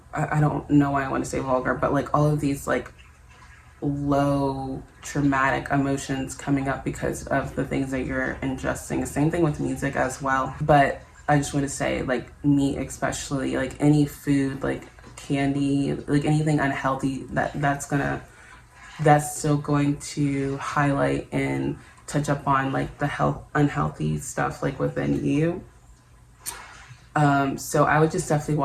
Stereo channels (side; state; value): both; identical; correlation 1.00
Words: don't know why I want to say vulgar, but like all of these like low traumatic emotions coming up because of the things that you're ingesting. Same thing with music as well. But I just want to say, like meat especially, like any food, like candy, like anything unhealthy, that's still going to highlight and touch up on like the unhealthy stuff like within you. So I would just definitely